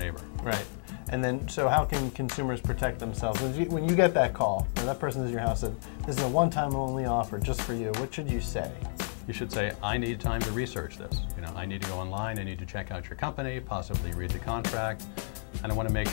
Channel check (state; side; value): silent; right; digital silence